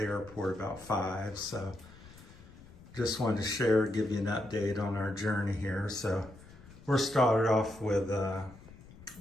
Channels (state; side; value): noise; left; rumble, 20 dB below the sound